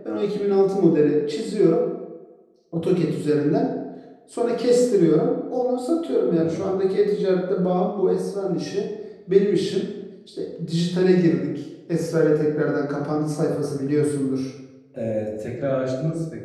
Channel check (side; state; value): both; identical; correlation 1.00